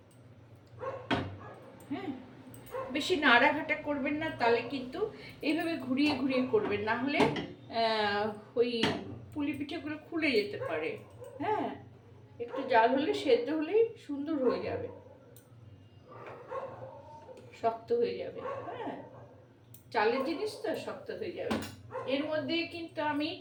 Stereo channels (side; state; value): both; identical; correlation 1.00